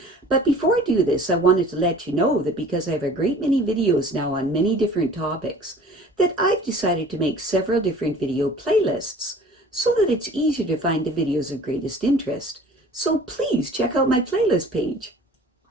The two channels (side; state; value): both; normal; correlation 0.47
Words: But before I do this, I wanted to let you know that because I have a great many videos now on many different topics, that I've decided to make several different video playlists so that it's easier to find the videos of greatest interest. So please check out my playlist page.